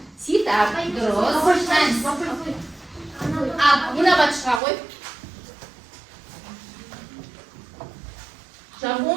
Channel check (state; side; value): drops out; left; at 4.6 s